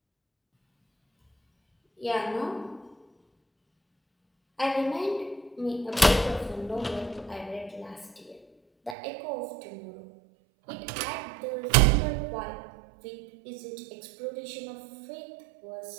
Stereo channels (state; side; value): drops out; left; at 9.0 s